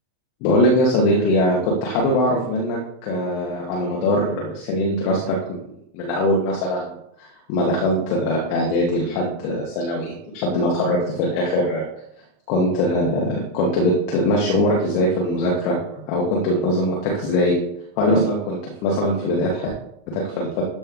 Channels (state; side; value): late; right; 38 ms